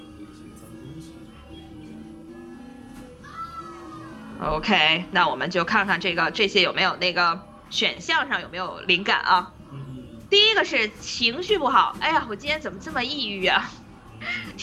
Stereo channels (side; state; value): both; identical; correlation 1.00